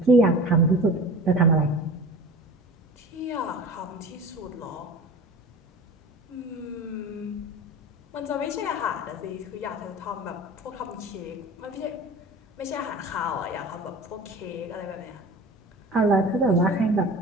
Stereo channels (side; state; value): both; normal; correlation 0.37